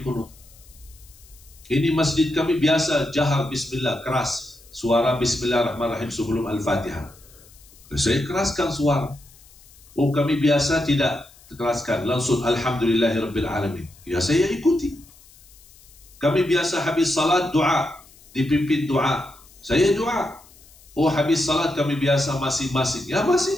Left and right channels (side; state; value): left; noise; hiss, 25 dB below the sound